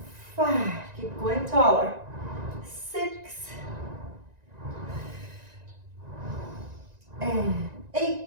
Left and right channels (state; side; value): late; left; 1.9 ms